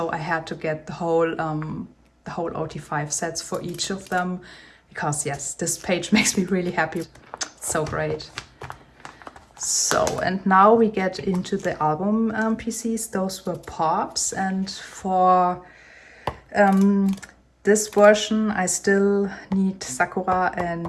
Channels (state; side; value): identical; both; correlation 1.00